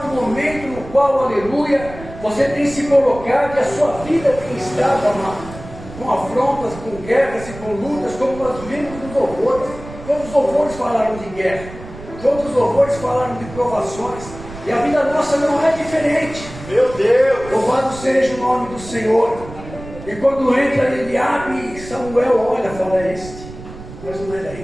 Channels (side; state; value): right; noise; rumble, 14 dB below the sound